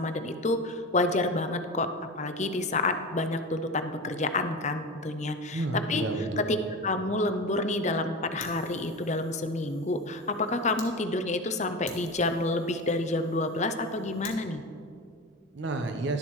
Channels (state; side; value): normal; both; correlation 0.27